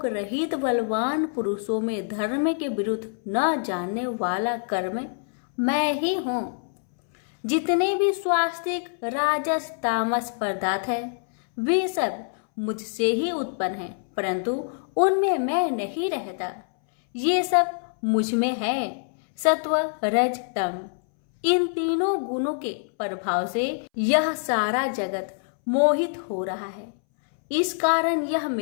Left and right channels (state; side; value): silent; right; 62 dB below the other